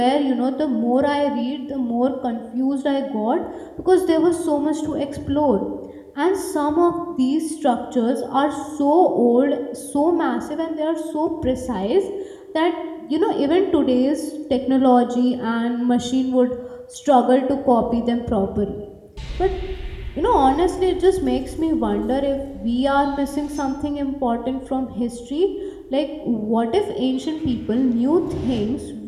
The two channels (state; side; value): identical; both; correlation 1.00